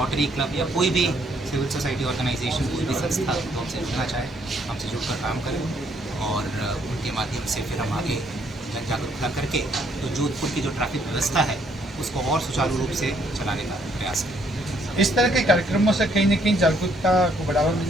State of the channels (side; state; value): both; normal; correlation 0.68